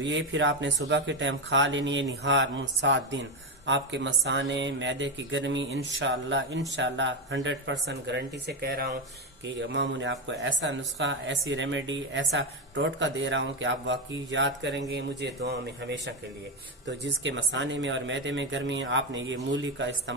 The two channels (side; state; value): both; normal; correlation 0.10